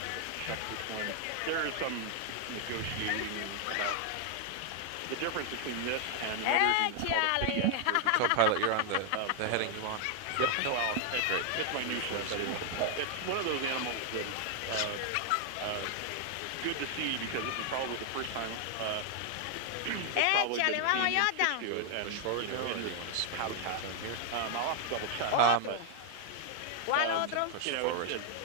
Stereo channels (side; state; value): both; different; correlation 0.00